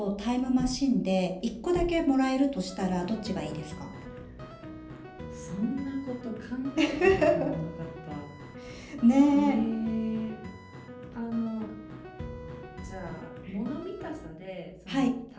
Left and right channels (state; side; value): identical; both; correlation 1.00